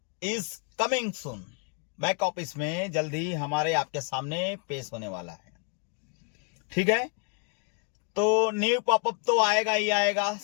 is coming soon. Back office में जल्दी हमारे आपके सामने पेश होने वाला है, ठीक है। तो न्यू पॉपअप तो आएगा ही आएगा,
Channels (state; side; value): quieter; right; 38.7 dB